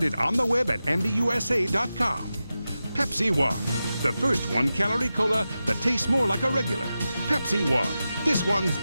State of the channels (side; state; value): both; inverted; correlation -0.93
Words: on the web at MBUSA.com. Pepsi One, the first 1-calorie cola that tastes more like a regular. Pepsi One, this one's